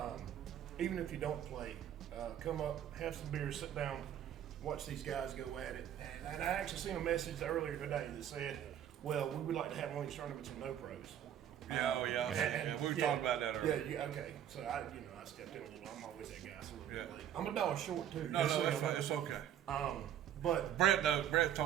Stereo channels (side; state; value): left; quieter; 10.4 dB